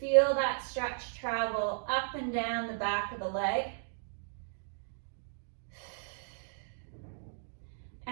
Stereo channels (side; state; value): left; silent; digital silence